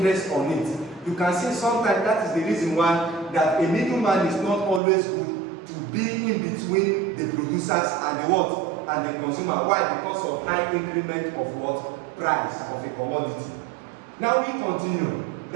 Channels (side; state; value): left; drops out; at 4.8 s